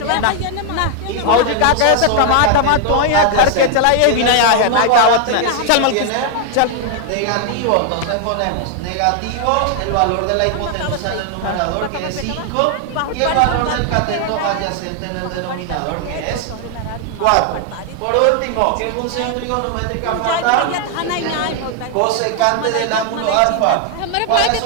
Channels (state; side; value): different; both; correlation 0.00